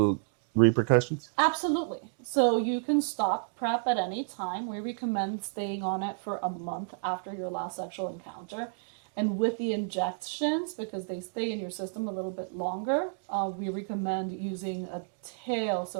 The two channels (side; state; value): left; silent; digital silence